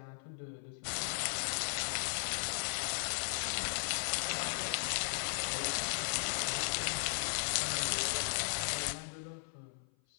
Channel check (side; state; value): right; silent; 53 dB below the other